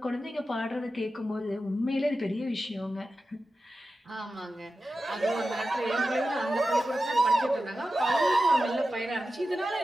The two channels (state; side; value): normal; both; correlation 0.93